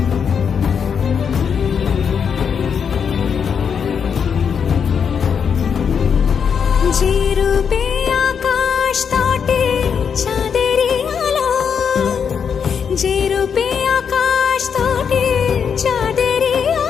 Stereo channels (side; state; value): right; quieter; 6.9 dB